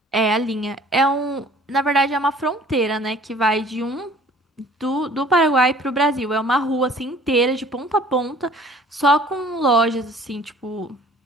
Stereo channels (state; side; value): normal; both; correlation 0.52